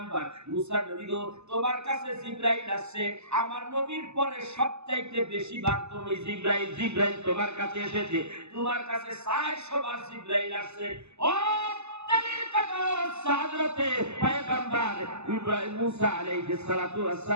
মুসা নবী গো, তোমার কাছে জিবরাইল আসছে। আমার নবীর পরে সবচাইতে বেশি বার তুমি জিবরাইল তোমার কাছে এসেছে, তোমার কাছে 400 বার জিবরাইল আসছে। ও হযরতে পয়গম্বর ইব্রাহিম মুসা আলাইহিস সালাতু ওয়াস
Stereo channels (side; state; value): left; late; 0.81 ms